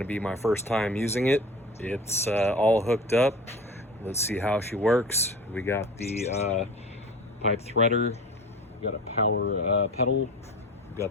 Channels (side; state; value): both; normal; correlation 0.37